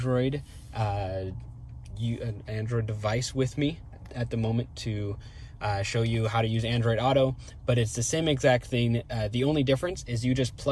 device with me at the moment to show you how to use Android Auto, but it's the same exact thing. The only difference is you just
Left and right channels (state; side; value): identical; both; correlation 1.00